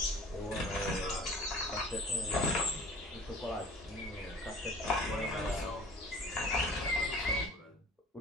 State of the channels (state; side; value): normal; both; correlation 0.46